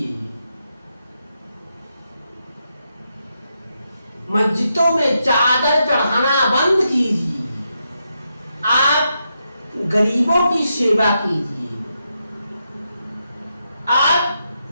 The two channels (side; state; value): both; inverted; correlation -0.83